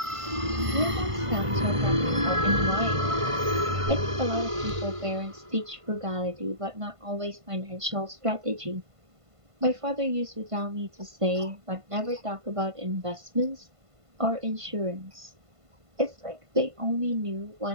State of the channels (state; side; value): late; left; 1.5 ms